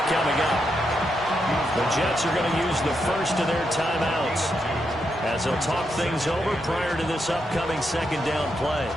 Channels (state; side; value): normal; both; correlation 0.82